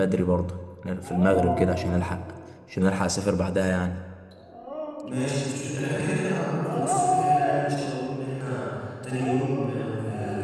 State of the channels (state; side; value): identical; both; correlation 1.00